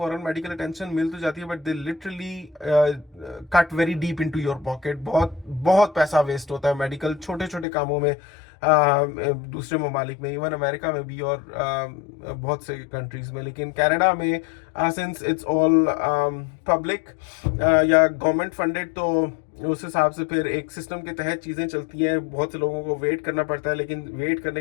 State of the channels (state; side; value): drops out; right; at 7.7 s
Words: मेडिकल अटेंशन मिल तो जाती है, but they literally cut very deep into your pocket. बहुत बहुत पैसा वेस्ट होता है मेडिकल छोटे छोटे कामों में, दूसरे ममालिक में, इवन अमेरिका में भी, और बहुत से कंट्रीज में। लेकिन कनाडा में सिंस इट्स ऑल पब्लिक या गवर्नमेंट फंडेड, तो उस हिसाब से फिर एक सिस्टम के तहत चीज़ें चलती हैं। बहुत से लोगों को वेट करना पड़ता है, लेकिन वेट